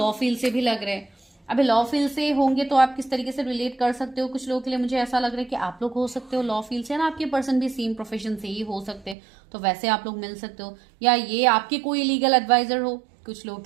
फील्ड से भी लग रहे हैं। अभी लॉ फील्ड से होंगे तो आप किस तरीके से रिलेट कर सकते हो, कुछ लोगों के लिए मुझे ऐसा लग रहा है कि आप लोग हो सकते हो लॉ फील्ड से ना, आपके पर्सन भी सेम प्रोफेशन से ही हो सकते हैं तो वैसे आप लोग मिल सकते हो, या ये आपके कोई लीगल एडवाइजर हो, कुछ लोगों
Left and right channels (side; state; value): left; drops out; at 9.2 s